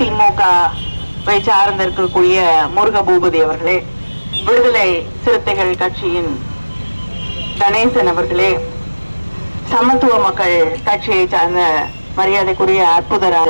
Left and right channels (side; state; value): both; inverted; correlation -1.00